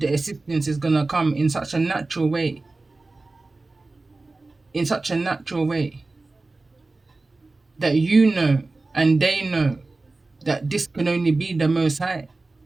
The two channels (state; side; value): quieter; left; 3.4 dB